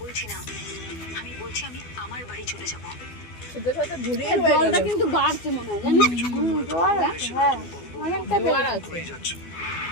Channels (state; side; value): late; right; 12 ms